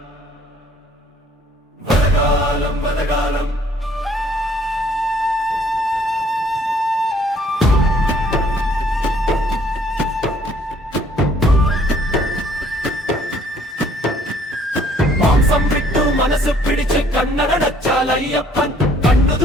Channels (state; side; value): normal; both; correlation 0.61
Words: വ്രതകാലം വ്രതകാലം മാംസം വിട്ടു മനസ്സ് പിടിച്ച് കണ്ണടച്ചാൽ അയ്യപ്പൻ കണ്ണു